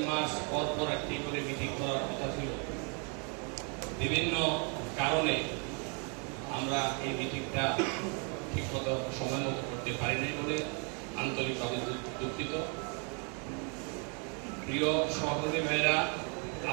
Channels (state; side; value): quieter; left; 37.3 dB